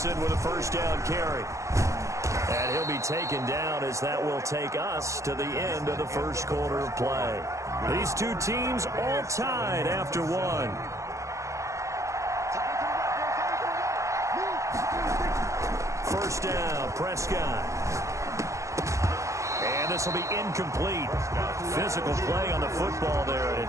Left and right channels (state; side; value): late; left; 0.15 ms